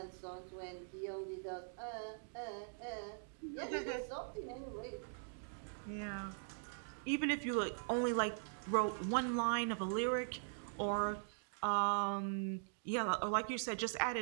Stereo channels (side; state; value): left; silent; digital silence